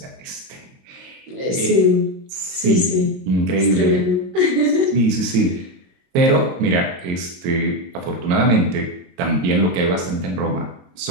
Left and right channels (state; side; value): late; left; 22 ms